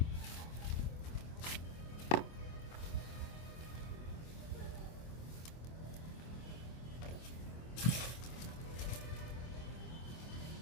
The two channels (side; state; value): right; late; 25 ms